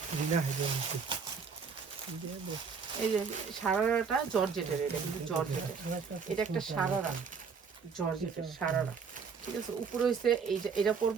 দিনা হেজে এই যে সারারাটা জর্জেটের এটা কিন্তু জর্জেটের এটা একটা সারারা জর্জেটের সারারা ঠিক আছে উপরে হচ্ছে এটা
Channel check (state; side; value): quieter; left; 5.7 dB